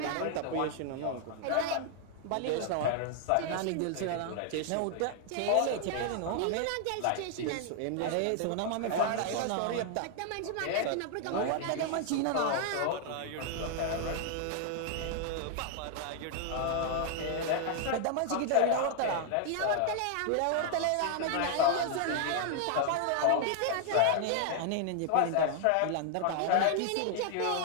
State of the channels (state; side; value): different; both; correlation 0.00